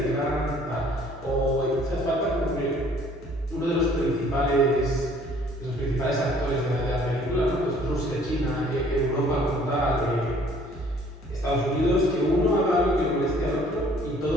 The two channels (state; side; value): normal; both; correlation 0.57